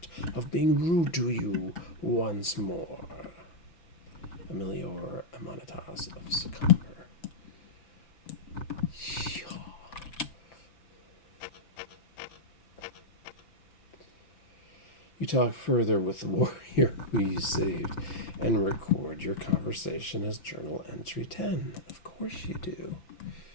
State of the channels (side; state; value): right; late; 5.9 ms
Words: of being rude to you once more. Emilior Amanatas of Sycomber. You talk further with the warrior who you saved and record your conversation as journal entry 10. Of course you do.